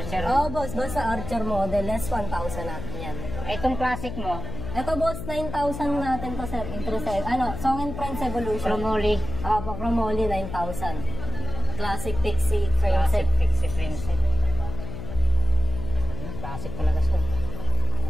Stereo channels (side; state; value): left; noise; hum, 7 dB below the sound